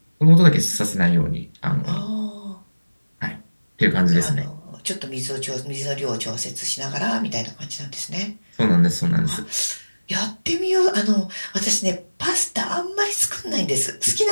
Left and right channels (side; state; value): both; inverted; correlation -1.00